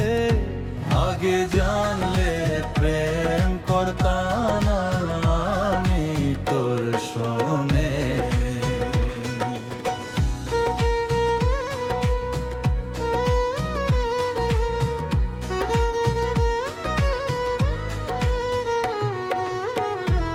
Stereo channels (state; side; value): identical; both; correlation 1.00